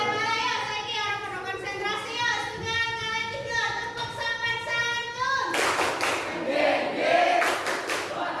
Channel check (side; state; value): both; identical; correlation 1.00